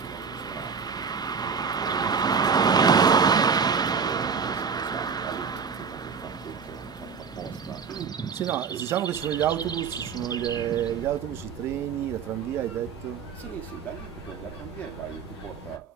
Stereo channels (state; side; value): quieter; left; 6.0 dB